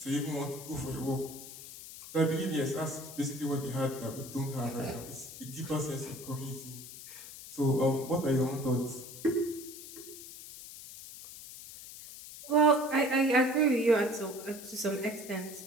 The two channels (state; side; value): noise; left; hiss, 14 dB below the sound